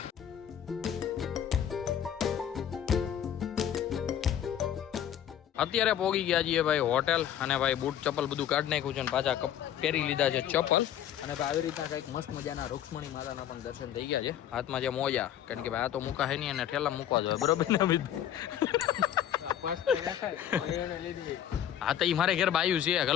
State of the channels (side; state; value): right; quieter; 10.5 dB